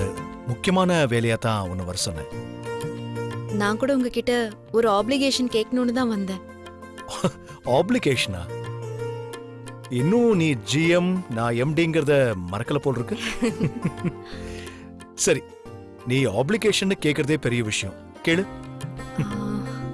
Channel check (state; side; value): identical; both; correlation 1.00